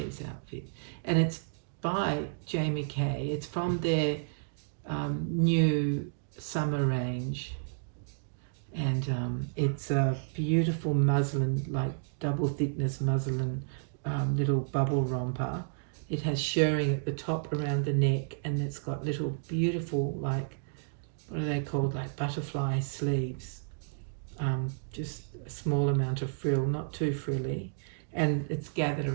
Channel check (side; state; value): left; silent; digital silence